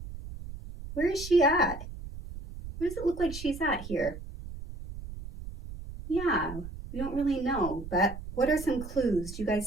where is she at? Where does it look like she's at here? Yeah, we don't really know, but what are some clues? Do you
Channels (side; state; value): right; noise; rumble, 11 dB below the sound